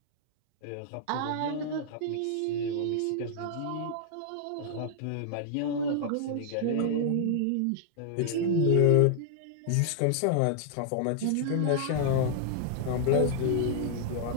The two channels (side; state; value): both; different; correlation -0.01